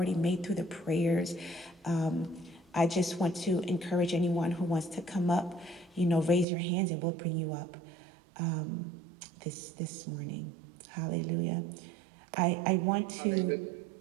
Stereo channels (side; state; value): left; drops out; at 6.5 s